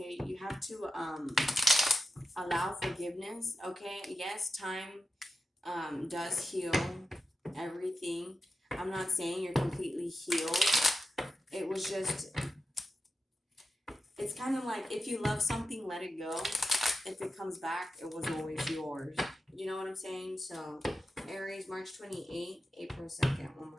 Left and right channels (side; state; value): both; normal; correlation 0.91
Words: You have to allow forgiveness, okay? Yes, time does heal everything. I'm not saying you're completely healed. It was just, it's kind of like, if you love something, let it go. If it comes back, it was always yours. You know what I'm saying? So, Aries, March 28th, April 2nd. One